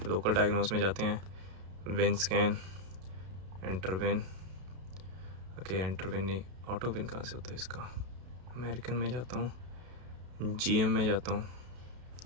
लोकल डायग्नोस में जाते हैं, win scan, enter win. Okay, enter win नहीं, ऑटो विन कहाँ से होता है इसका? अमेरिकन में जाता हूँ, GM में जाता हूँ।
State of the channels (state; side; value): late; left; 32 ms